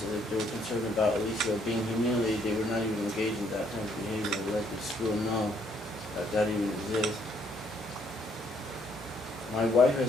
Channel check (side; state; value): both; normal; correlation 0.68